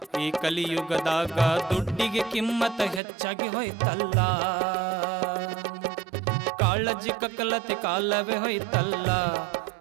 ಈ ಕಲಿಯುಗದಾಗ ದುಡ್ಡಿಗೆ ಕಿಮ್ಮತ್ತ ಹೆಚ್ಚಾಗಿ ಹೋಯ್ತಲ್ಲ. ಕಾಳಜಿ ಕಕ್ಕಲತಿ ಕಾಲವೇ ಹೋಯ್ತಲ್ಲ,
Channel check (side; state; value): left; drops out; at 3.0 s